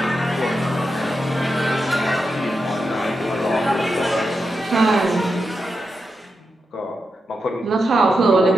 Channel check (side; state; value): both; normal; correlation 0.87